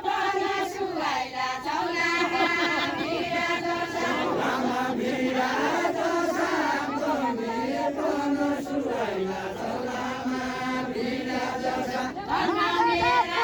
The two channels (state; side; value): identical; both; correlation 1.00